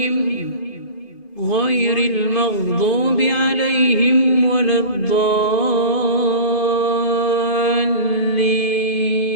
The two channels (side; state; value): right; late; 2.5 ms